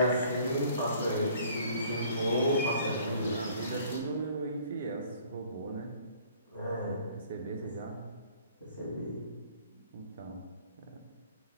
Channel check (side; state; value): both; inverted; correlation -0.56